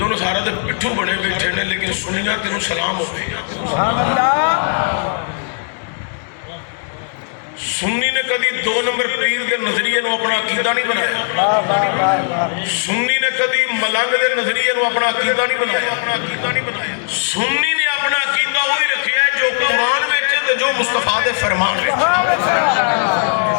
سارا دے پٹھو بڑے بیٹھے نے لیکن سنیاں تینوں سلام ہوئے. سنی نے کدی 2 نمبر پیر کے نظریے نو اپنا عقیدہ نہیں بنایا. سنی نے کدی ملنگ کے نظریے نو اپنا عقیدہ نہیں بنایا. سنی نے اپنا عقیدہ وہی رکھیا ہے جو قرآن میں جو مصطفیٰ دے فرمان میں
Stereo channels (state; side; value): silent; right; digital silence